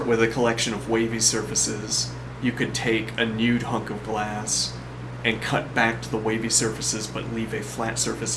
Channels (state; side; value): identical; both; correlation 1.00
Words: with a collection of wavy surfaces, you could take a nude hunk of glass and cut back to the wavy surfaces but leave a flat